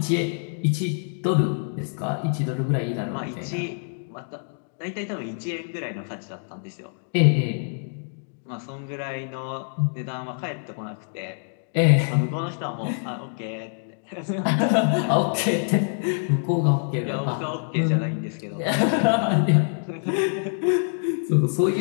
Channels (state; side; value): silent; right; digital silence